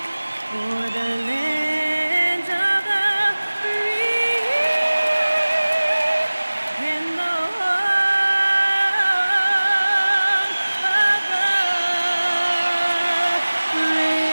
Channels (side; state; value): both; inverted; correlation -1.00